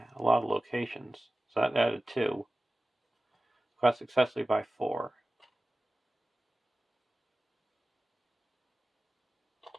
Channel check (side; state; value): both; normal; correlation 0.96